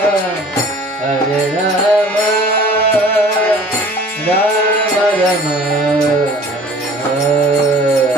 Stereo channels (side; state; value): both; normal; correlation 0.48